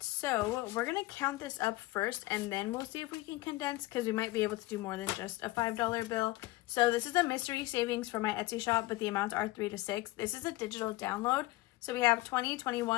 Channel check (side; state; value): right; quieter; 19.2 dB